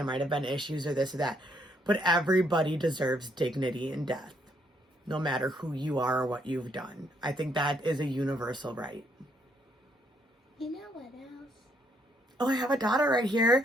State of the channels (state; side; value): normal; both; correlation 0.71